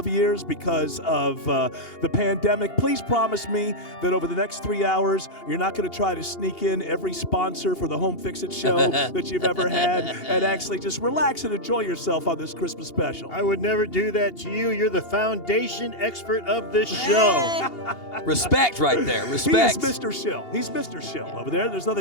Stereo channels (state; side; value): late; right; 2.8 ms